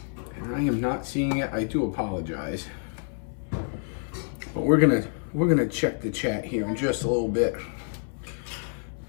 and I am not seeing it, I do apologize. But we're gonna check the chat here in just a little bit.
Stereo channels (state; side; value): silent; right; 60 dB below the other